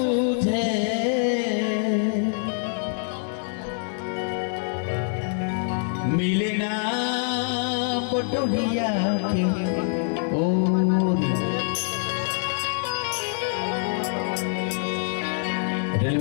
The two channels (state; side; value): silent; right; 62 dB below the other